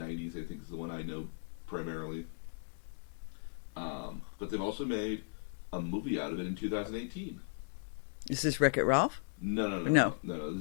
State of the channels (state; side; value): silent; right; digital silence